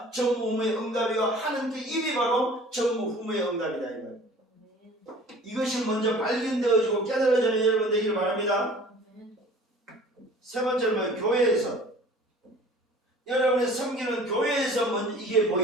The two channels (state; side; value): normal; both; correlation 0.47